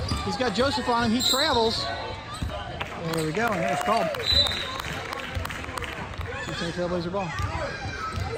He's got Joseph on him. He travels. There we go, and it was called. Cincinnati Trailblazer ball.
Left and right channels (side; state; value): both; identical; correlation 1.00